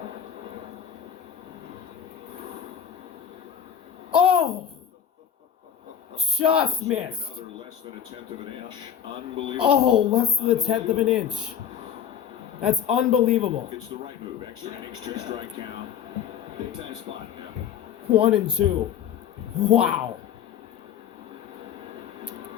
Oh! Just missed. Another less than a tenth of an inch. Unbelievable. Oh, less than a tenth of an inch. That's unbelievable. It's the right move. Extra innings, 2 strike count. Big time spot. Yeah. 1-2. Wow.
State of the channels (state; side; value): quieter; right; 8.8 dB